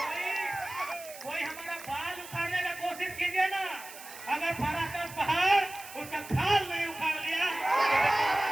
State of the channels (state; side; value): noise; right; hiss, 15 dB below the sound